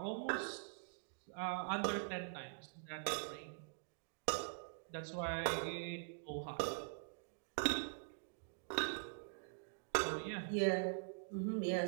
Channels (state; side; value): silent; left; digital silence